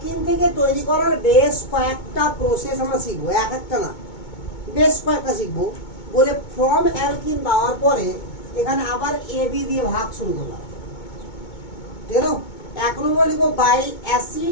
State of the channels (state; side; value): late; right; 2.2 ms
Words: থেকে তৈরি করার বেশ কয়েকটা প্রসেস আমরা শিখবো এক একটা না বেশ কয়েকটা শিখবো বলে ফ্রম অ্যালকিন দেওয়ার পরে এখানে আবার AB দিয়ে ভাগ শুরু করলাম ঠিক আছে এক নম্বর লিখবো by